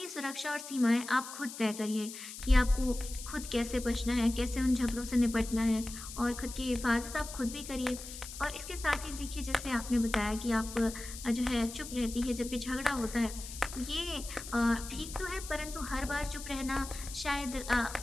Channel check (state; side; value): noise; left; hiss, 11 dB below the sound